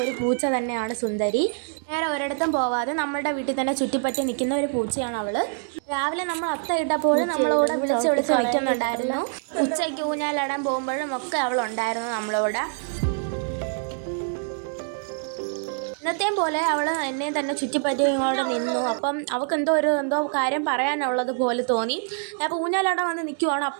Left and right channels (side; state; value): left; silent; 62 dB below the other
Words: ഒരു പൂച്ച തന്നെയാണ് സുന്ദരി. നേരെ ഒരിടത്തും പോവാതെ നമ്മളുടെ വീട്ടിൽ തന്നെ ചുറ്റിപ്പറ്റി നിൽക്കുന്ന ഒരു പൂച്ചയാണ് അവൾ. രാവിലെ നമ്മൾ അത്ത ഇട്ടപ്പോഴും നമ്മളോട് വിളിച്ച് നിൽക്കുന്നുണ്ടായിരുന്നു. ഉച്ചയ്ക്ക് ഊഞ്ഞാലിടാൻ പോകുമ്പോഴും ഒക്കെ അവളുണ്ടായിരുന്നു നമ്മളോട്. ഇന്നത്തെയും പോലെ അവൾ എന്നെ തന്നെ ചുറ്റിപ്പറ്റി ഇങ്ങോട്ട് നിന്നു. അപ്പം അവൾക്ക് എന്തോ കാര്യം പറയാനുള്ളത് പോലെ തോന്നി. ഞാൻ അപ്പോൾ ഊഞ്ഞാലവിടെ വന്ന് നിൽക്കുവാണ്.